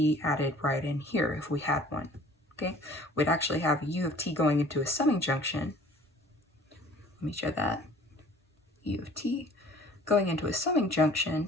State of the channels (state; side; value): normal; both; correlation 0.51